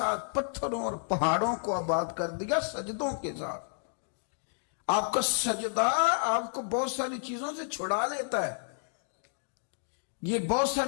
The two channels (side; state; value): right; silent; digital silence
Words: پتھروں اور پہاڑوں کو آباد کر دیا، سجدوں کے ساتھ۔ آپ کا سجدہ آپ کو بہت ساری چیزوں سے چھڑا لیتا ہے، یہ بہت